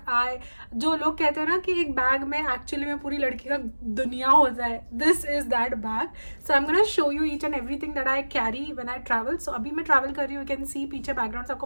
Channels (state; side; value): inverted; both; correlation -1.00